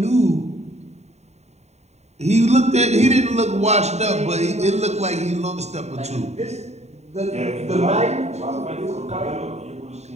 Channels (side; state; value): left; late; 0.32 ms